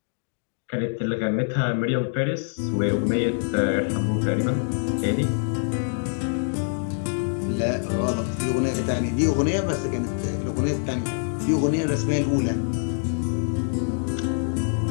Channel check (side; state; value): right; silent; digital silence